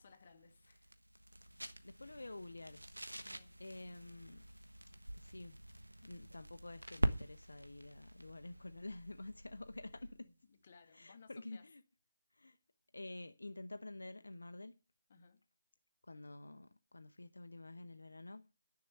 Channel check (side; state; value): both; inverted; correlation -0.98